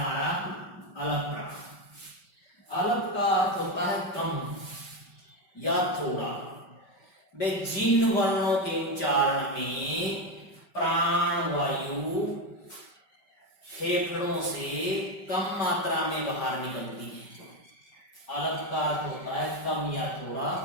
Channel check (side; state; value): right; late; 5.2 ms